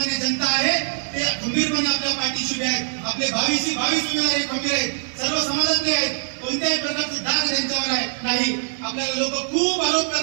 जनता आहे ते खंबीरपणे आपल्या पाठीशी उभे आहेत. आपले 22 उमेदवार हे खंबीर आहेत, सर्व समाजातले आहेत, कोणत्याही प्रकारचे दाग त्यांच्यावर आहे नाही. आपल्याला लोक खूप आरोप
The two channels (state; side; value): silent; left; 62 dB below the other